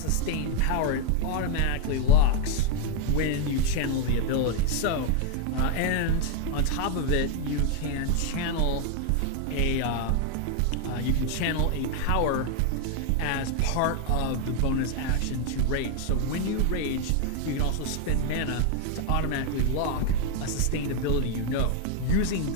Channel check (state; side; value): different; both; correlation 0.01